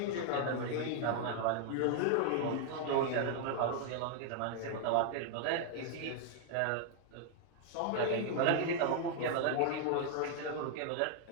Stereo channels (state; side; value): different; both; correlation 0.00